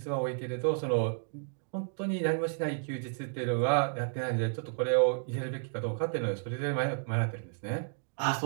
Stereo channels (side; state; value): left; silent; digital silence